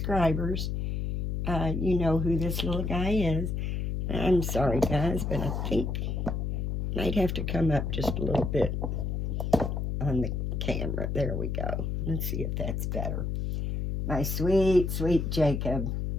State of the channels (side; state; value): left; noise; hum, 1 dB below the sound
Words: You know who this little guy is. I'm sorry, guys, but I think might have to come up just a little bit on the camera. There we go. Let's see if that's better. My sweet, sweet Jacob.